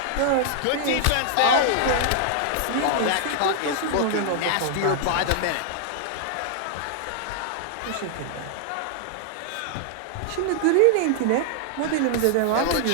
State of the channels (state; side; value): different; both; correlation 0.00